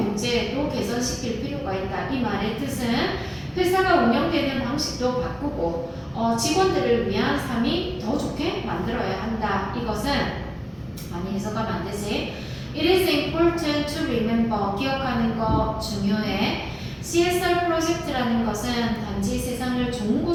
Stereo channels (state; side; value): identical; both; correlation 1.00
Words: 개선시킬 필요가 있다. 이 말의 뜻은 회사가 운영되는 방식도 바꾸고 직원들을 위한 삶이 더 좋게 만들어야 한다. 이것은 많이 해석하면 안 되지. It is important to remember. 기억하는 거 중요해. CSR 프로젝트라는 것은 단지 세상을 좋은